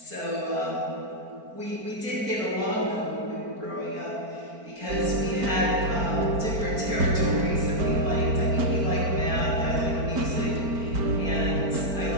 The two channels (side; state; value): left; late; 4.4 ms